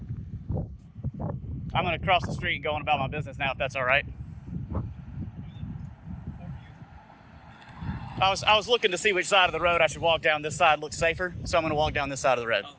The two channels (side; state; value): both; identical; correlation 1.00